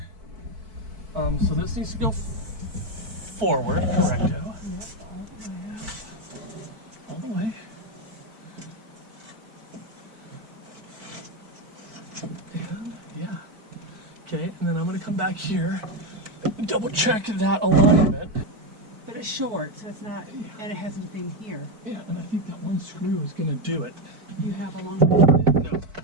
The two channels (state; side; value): late; left; 4.6 ms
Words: So this needs to go forward, correcto. Yep, all the way. All the way. And yeah. Okay, and then I'm gonna come back here and double check that alignment. But it's short, so it's not, and it has anything here. Yeah, and I think that one screw is gonna do it. You have a long one? No.